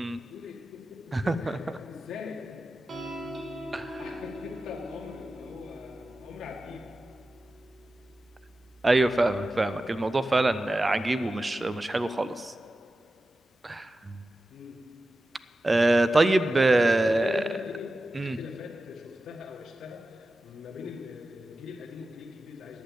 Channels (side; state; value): both; normal; correlation 0.93